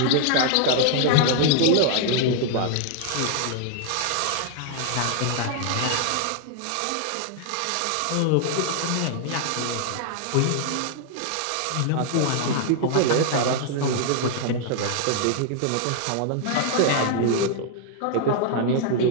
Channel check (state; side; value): different; both; correlation 0.00